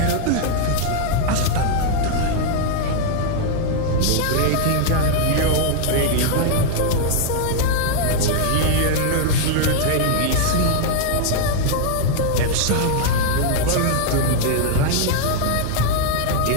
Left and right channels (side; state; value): both; different; correlation 0.00